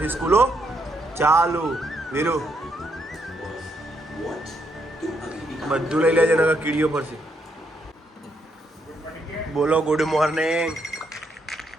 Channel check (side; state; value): both; normal; correlation 0.76